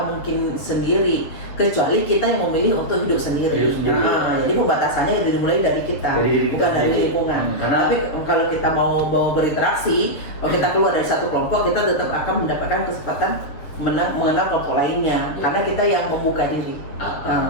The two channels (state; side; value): late; right; 7.2 ms